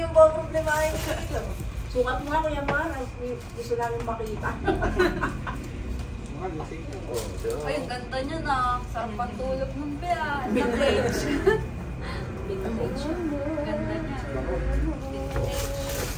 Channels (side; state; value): both; identical; correlation 1.00